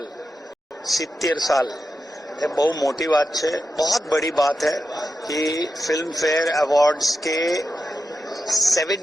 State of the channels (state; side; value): normal; both; correlation 0.88